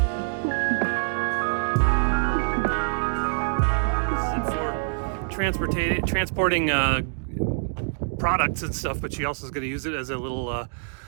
Transporting products and stuff, but she also is going to use it as a little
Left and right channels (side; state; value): left; silent; digital silence